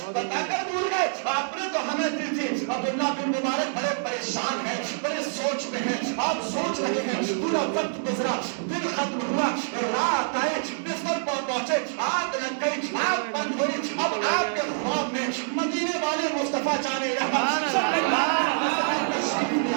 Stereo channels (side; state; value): left; silent; digital silence